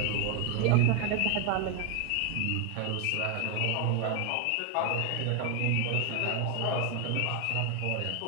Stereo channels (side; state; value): both; different; correlation 0.01